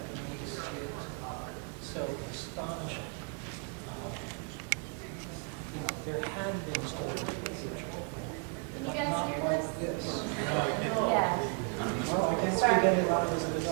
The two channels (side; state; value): left; quieter; 37.9 dB